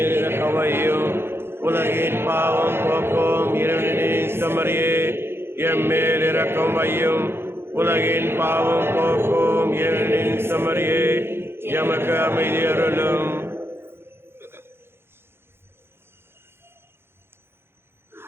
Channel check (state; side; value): late; left; 0.11 ms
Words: இரக்கமையும். உலகின் பாவம் போக்கும் இருளின் செம்மறியே எம்மேல் இரக்கம் வையும். உலகின் பாவம் போக்கும் இருளின் செம்மறியே எமக்கு அமைதி அருளும்.